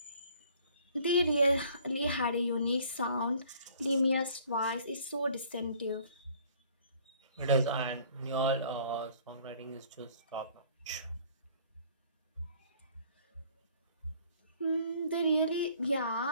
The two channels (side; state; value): both; inverted; correlation -0.57